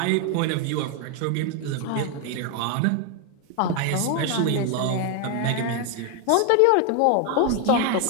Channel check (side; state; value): both; different; correlation 0.01